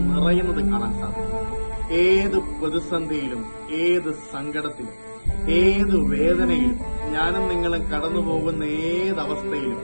നിറയുന്നത് കാണാൻ സാധിക്കും. ഏത് പ്രതിസന്ധിയിലും, ഏത് സങ്കടത്തിലും, ഏത് വേദനയിലും, ഞാനും നിങ്ങളും കടന്നുപോകുന്ന ഏതവസ്ഥയിലും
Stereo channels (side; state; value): both; inverted; correlation -1.00